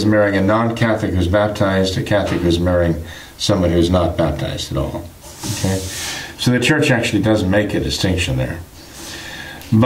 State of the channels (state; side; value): identical; both; correlation 1.00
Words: marrying a non-Catholic who's baptized, a Catholic who's marrying someone who's not baptized at all. Okay, so the Church actually does make a distinction there.